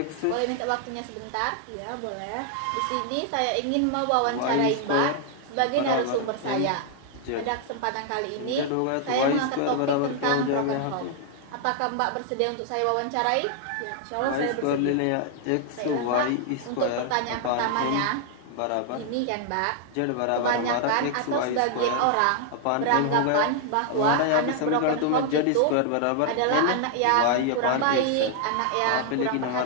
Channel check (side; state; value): both; different; correlation 0.00